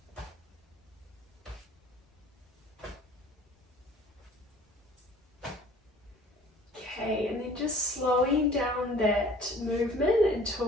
Okay, and then just slowing down that movement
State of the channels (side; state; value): both; normal; correlation 0.50